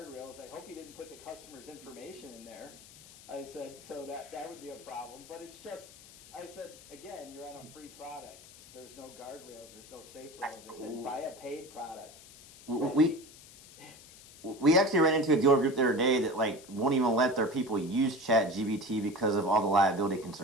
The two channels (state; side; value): noise; left; hiss, 20 dB below the sound